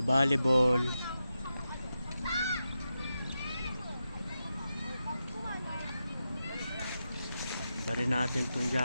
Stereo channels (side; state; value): both; inverted; correlation -0.89